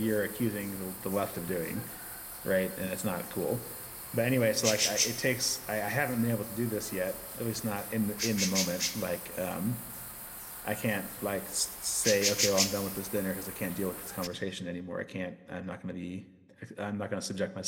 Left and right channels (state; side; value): identical; both; correlation 1.00